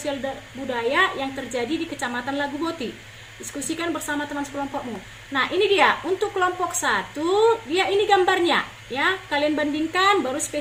budaya yang terjadi di Kecamatan Laguboti. Diskusikan bersama teman sekelompokmu. Nah, ini dia untuk kelompok 1, dia ini gambarnya ya. Kalian bandingkan baru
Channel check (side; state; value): both; identical; correlation 1.00